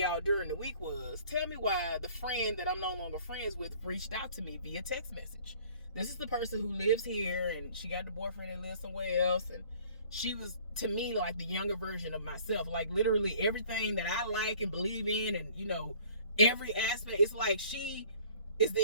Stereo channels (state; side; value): inverted; both; correlation -0.53